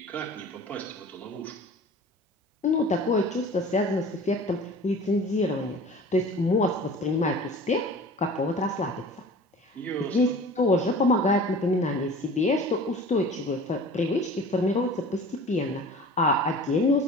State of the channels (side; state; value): both; normal; correlation 0.42